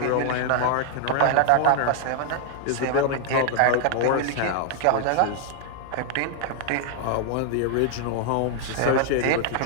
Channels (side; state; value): both; different; correlation 0.00